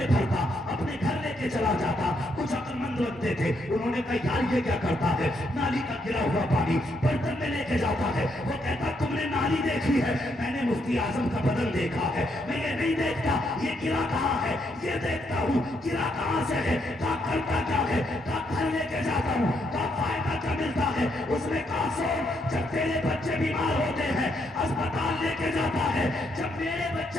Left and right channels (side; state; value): both; normal; correlation 0.76